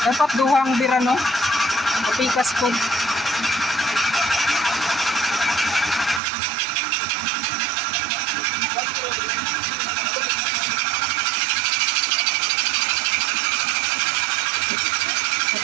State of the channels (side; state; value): left; drops out; at 6.2 s